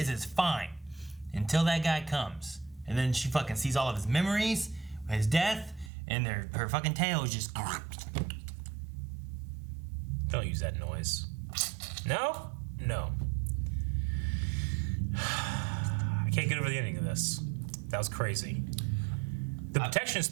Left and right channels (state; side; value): drops out; left; at 5.9 s